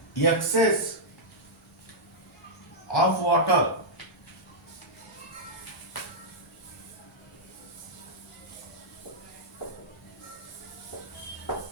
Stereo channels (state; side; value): normal; both; correlation -0.08